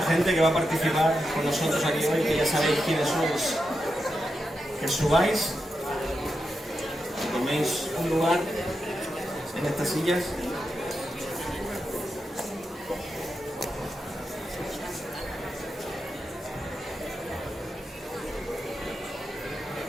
gente que va a participar con nosotros aquí hoy, que ya sabéis quiénes sois, que subáis, que toméis un lugar en estas sillas.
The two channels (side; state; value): both; normal; correlation 0.87